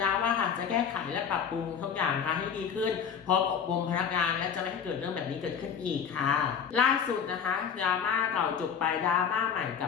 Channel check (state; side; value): quieter; right; 7.3 dB